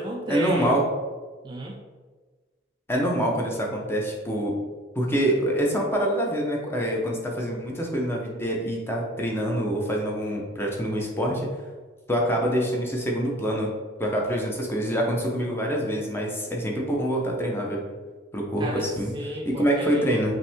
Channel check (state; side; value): normal; both; correlation 0.48